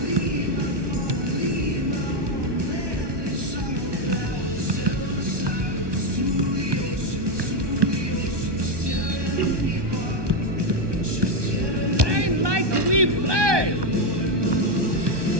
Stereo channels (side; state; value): left; late; 1.2 ms